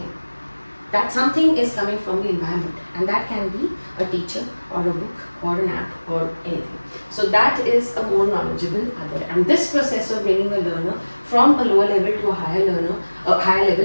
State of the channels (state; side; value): inverted; both; correlation -1.00